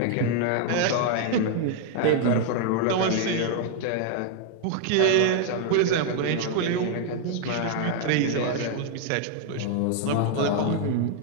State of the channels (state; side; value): different; both; correlation 0.00